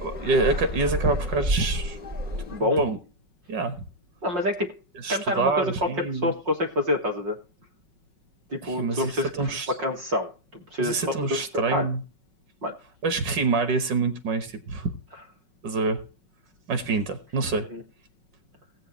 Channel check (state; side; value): late; left; 5.4 ms